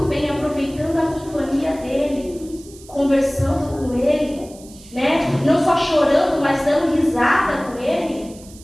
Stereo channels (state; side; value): noise; right; hiss, 22 dB below the sound